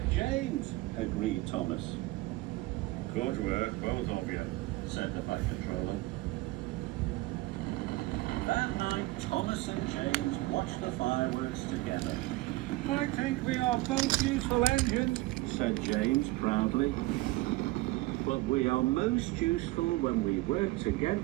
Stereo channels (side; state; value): left; quieter; 19.9 dB